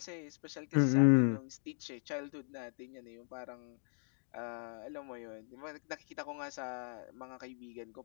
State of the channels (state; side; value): silent; right; 52 dB below the other